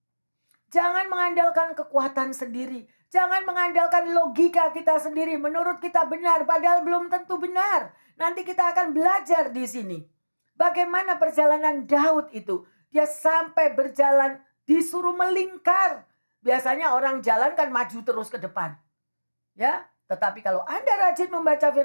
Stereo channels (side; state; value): both; inverted; correlation -1.00